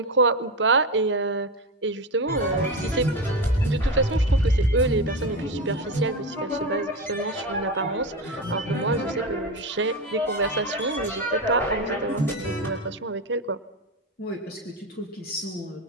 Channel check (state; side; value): normal; both; correlation 0.18